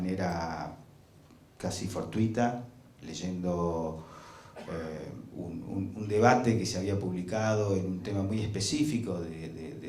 casi fortuita, leyendo un debate que se había publicado en un tema muy específico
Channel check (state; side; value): identical; both; correlation 1.00